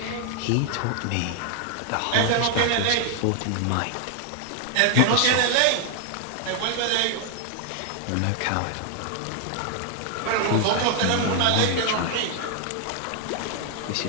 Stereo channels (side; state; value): both; different; correlation 0.00